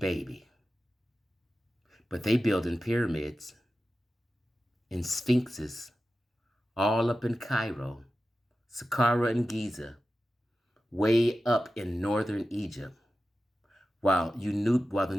But they building pyramids and sphinxes all up in Cairo, Saqqara and Giza, way up in northern Egypt, while the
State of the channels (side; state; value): both; normal; correlation 0.93